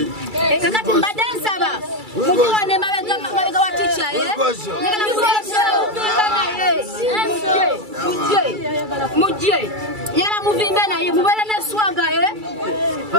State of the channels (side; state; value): left; late; 2.3 ms